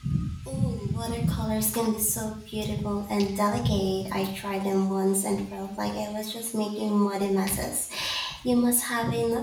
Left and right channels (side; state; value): both; identical; correlation 1.00